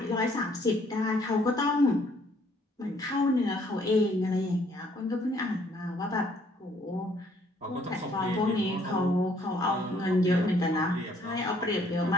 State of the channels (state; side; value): normal; both; correlation 0.64